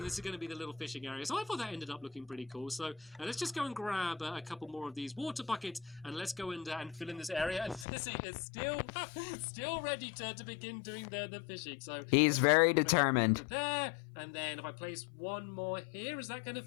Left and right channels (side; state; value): right; drops out; at 7.9 s